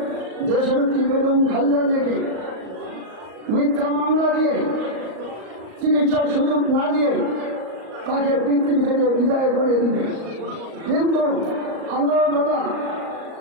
দেশনেত্রী বেগম খালেদা জিয়াকে মিথ্যা মামলা দিয়ে চিকিৎসার সুযোগ না দিয়ে তাকে পৃথিবী থেকে বিদায় করে দিবে। কিন্তু আল্লাহ দাদা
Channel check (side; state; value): left; late; 38 ms